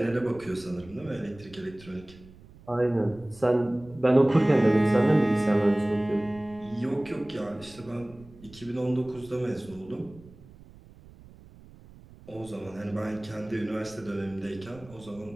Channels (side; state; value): right; noise; rumble, 22 dB below the sound